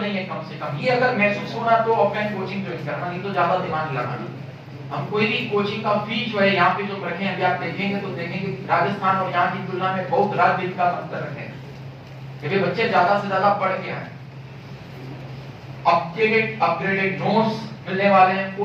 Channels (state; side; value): identical; both; correlation 1.00